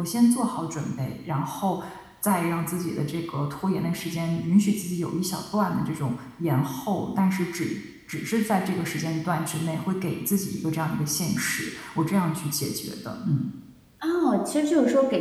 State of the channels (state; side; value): identical; both; correlation 1.00